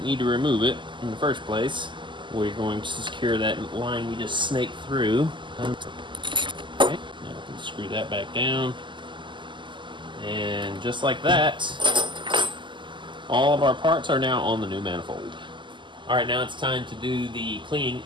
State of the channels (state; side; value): late; left; 0.24 ms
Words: need to remove it in the first place. We're going to secure that line we just snaked through. Okay, now we can screw that back down. And just like that, all of our parts are now on the new manifold. All right, now it's time to do the cleaning